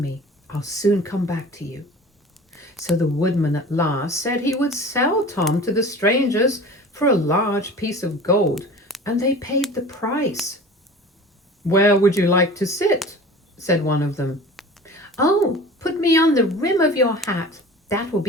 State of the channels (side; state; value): both; normal; correlation 0.40